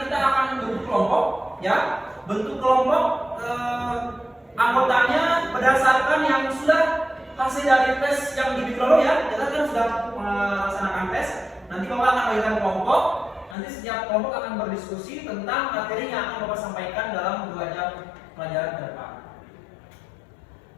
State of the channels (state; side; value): drops out; right; at 13.6 s